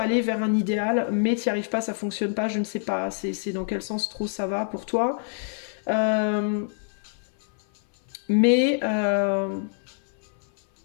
vers un idéal, mais tu n'y arrives pas, ça fonctionne pas, je ne sais pas. C'est dans quel sens trop ça va pour toi. Mais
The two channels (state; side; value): silent; right; 57 dB below the other